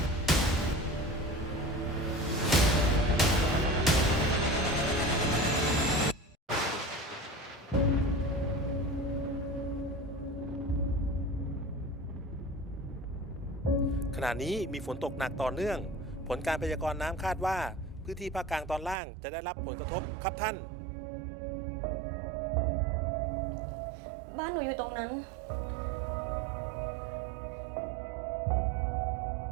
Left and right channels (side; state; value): left; drops out; at 18.9 s